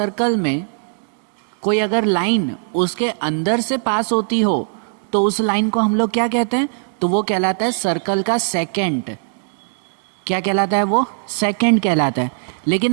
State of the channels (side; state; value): left; silent; digital silence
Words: में कोई अगर लाइन उसके अंदर से पास होती हो तो उस लाइन को हम लोग क्या कहते हैं, तो वो कहलाता है सर्कल का सेकेंड। क्या कहलाता है वो? सेकेंड कहलाता है।